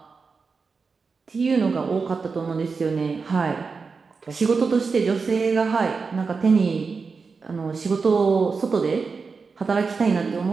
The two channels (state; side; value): quieter; left; 4.8 dB